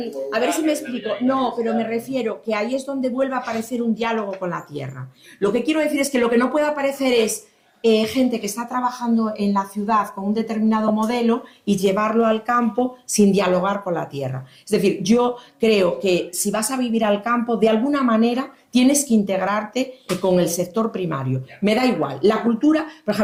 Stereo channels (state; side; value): identical; both; correlation 1.00